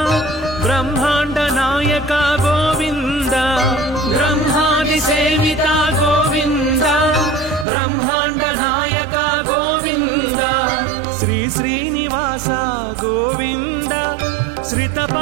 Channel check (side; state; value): left; drops out; at 7.7 s